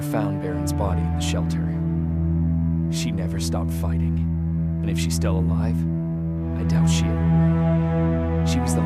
found Baron's body in the shelter. She never stopped fighting. And if she's still alive, I doubt she ever will. She was the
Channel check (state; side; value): identical; both; correlation 1.00